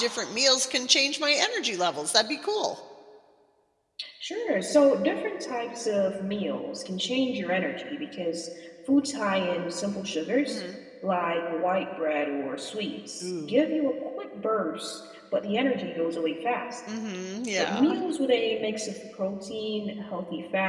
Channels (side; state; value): both; identical; correlation 1.00